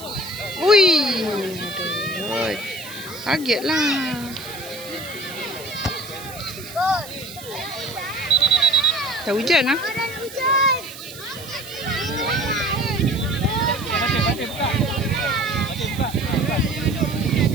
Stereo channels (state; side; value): noise; right; hiss, 15 dB below the sound